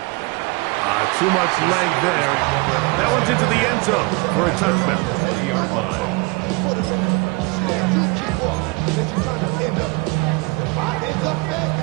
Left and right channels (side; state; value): left; quieter; 27.0 dB